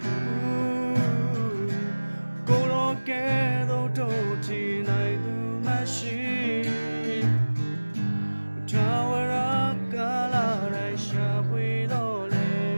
ကိုတော့ကဲတော့တို့ချီနိုင်သူမရှိထာဝရကာလတိုင်းရှာဖွေတော့လေ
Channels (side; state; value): both; inverted; correlation -1.00